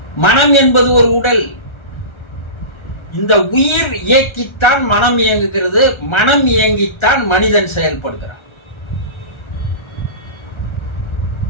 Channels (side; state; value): right; late; 1.3 ms